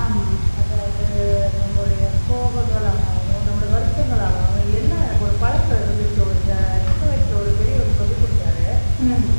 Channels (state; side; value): inverted; both; correlation -1.00